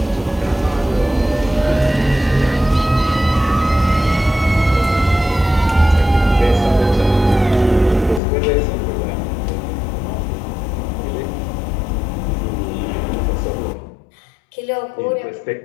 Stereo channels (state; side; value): drops out; right; at 8.2 s